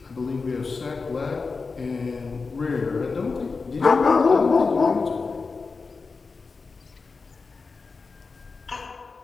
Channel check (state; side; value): quieter; right; 4.4 dB